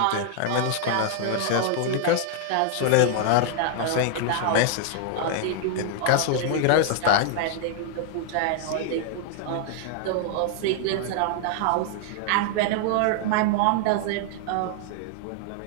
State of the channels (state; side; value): different; both; correlation 0.00